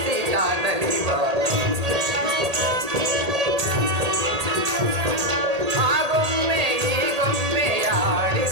ಕಾದಲಿವ ಆಗೊಮ್ಮೆ ಈಗೊಮ್ಮೆ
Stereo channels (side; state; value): left; late; 1.8 ms